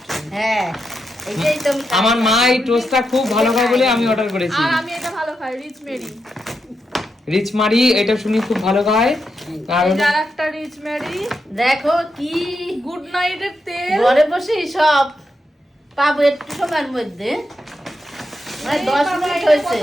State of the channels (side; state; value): both; normal; correlation 0.85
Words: হ্যাঁ এইটাই তো আমি আমার মা এই টোস্টটা খুব ভালো খায় বলে আমি অর্ডার করেছি। আর আমি এটা ভালো খাই, রিচ মেরি। রিচ মারি এটা শুনি খুব ভালো খায়। আর এই যার একটা রিচ মেরি, দেখো কি গুড নাইটের তেল। ঘরে বসে সব পাবো একটু সময়ের মধ্যে, মানে এই 10 বাবা, মিনিট এটা হয়েছে।